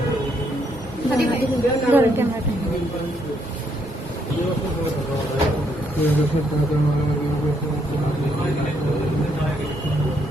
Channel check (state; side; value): normal; both; correlation 0.73